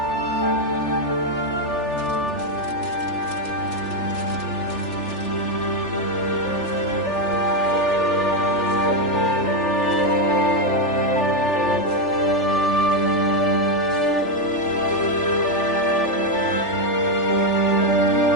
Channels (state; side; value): late; right; 3.4 ms